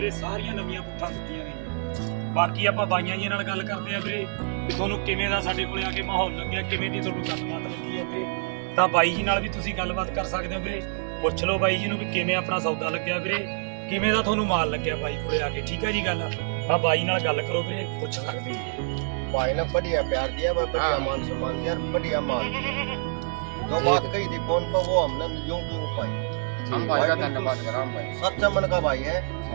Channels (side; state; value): left; silent; digital silence